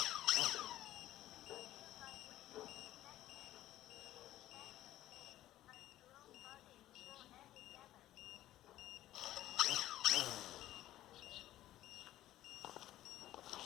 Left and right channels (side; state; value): right; quieter; 14.2 dB